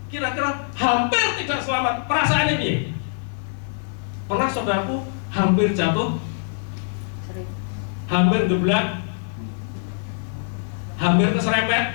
Kira-kira hampir tidak selamat, perasaannya piye? Pernah saudaraku hampir jatuh, hampir geblak, hampir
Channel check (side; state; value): right; silent; 55 dB below the other